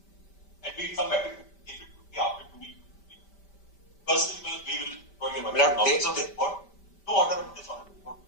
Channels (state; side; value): late; right; 5.1 ms